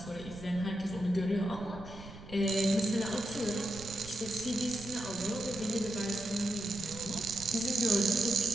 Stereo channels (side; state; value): right; noise; rumble, 16 dB below the sound